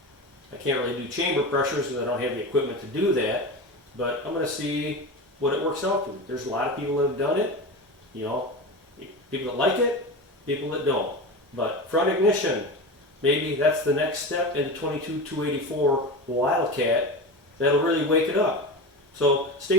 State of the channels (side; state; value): both; normal; correlation 0.26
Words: I can't really do chamber pressures because I don't have the equipment to do that, but I'm going to see what it works out to. There's a lot of people that have done it, you know, people that like it, people that don't. But front ignition, maybe that's the next step in the 22-284 Wildcat that'll really wake it up. So